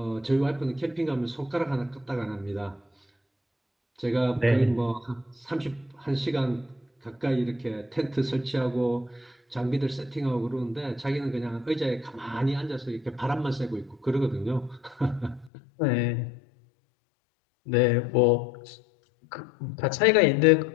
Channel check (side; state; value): right; drops out; at 15.5 s